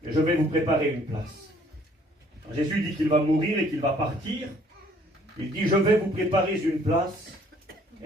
Et je vais vous préparer une place. Quand Jésus dit qu'il va mourir et qu'il va partir, il dit, je vais vous préparer une place.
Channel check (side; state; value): both; normal; correlation 0.60